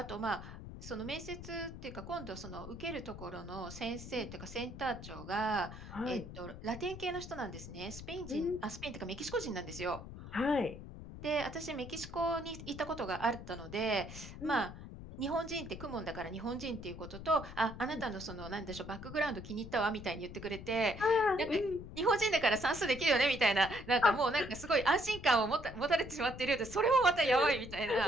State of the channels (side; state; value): left; noise; rumble, 12 dB below the sound